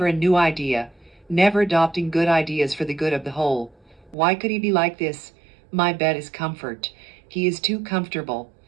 a new idea. Never adopting good ideas for the good of the whole. Why could he be like this? My bet is comfort. He is too comfortable.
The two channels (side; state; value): left; drops out; at 4.2 s